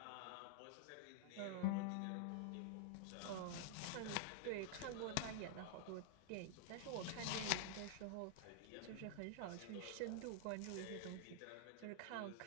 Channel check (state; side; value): different; both; correlation -0.01